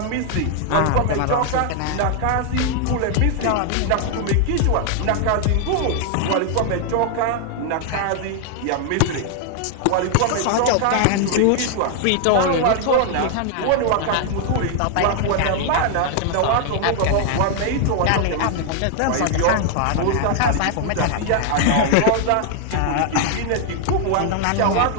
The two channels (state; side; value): different; both; correlation 0.00